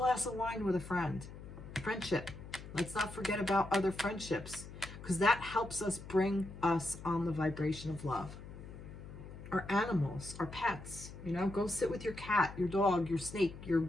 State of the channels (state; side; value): noise; left; hum, 13 dB below the sound